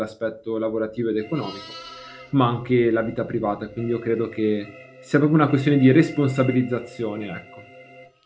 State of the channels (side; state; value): both; identical; correlation 1.00